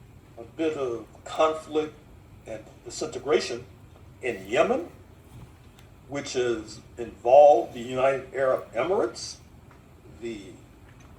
a bit of conflict and disintegration in Yemen, which has involved the United Arab Emirates, the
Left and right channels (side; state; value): both; identical; correlation 1.00